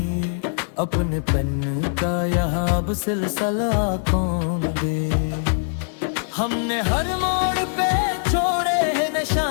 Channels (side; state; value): right; silent; digital silence